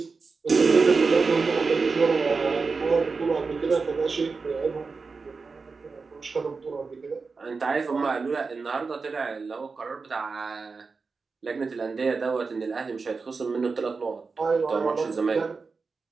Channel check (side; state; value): left; quieter; 4.5 dB